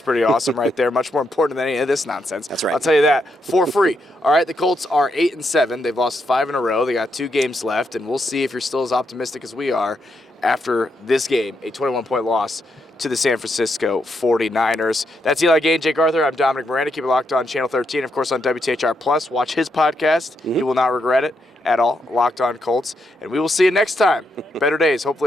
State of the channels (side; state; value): both; normal; correlation 0.80